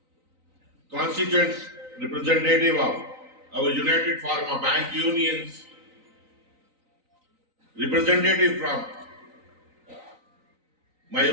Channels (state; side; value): late; left; 3.9 ms